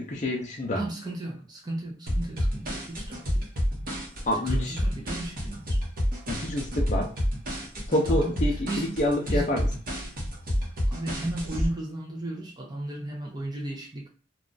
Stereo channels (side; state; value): both; normal; correlation 0.75